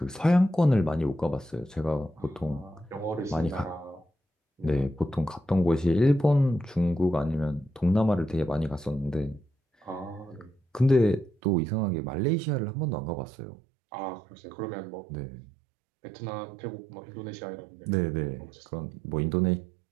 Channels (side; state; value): left; drops out; at 11.4 s